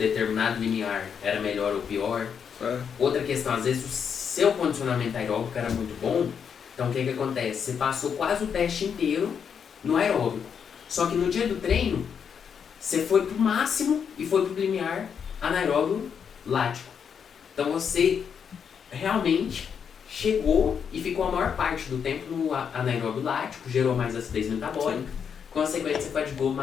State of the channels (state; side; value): quieter; right; 7.2 dB